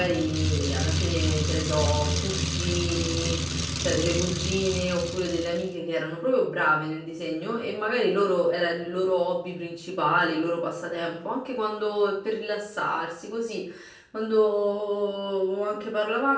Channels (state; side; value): identical; both; correlation 1.00